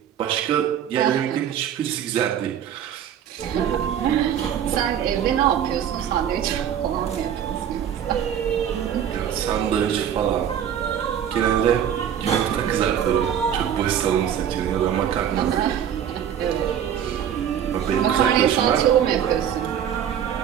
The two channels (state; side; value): quieter; left; 9.3 dB